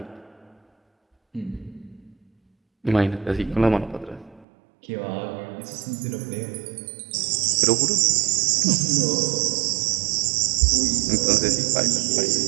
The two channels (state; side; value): drops out; left; at 4.5 s